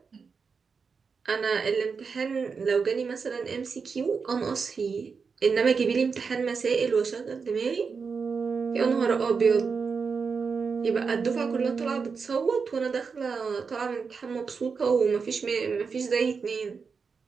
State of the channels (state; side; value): quieter; left; 5.3 dB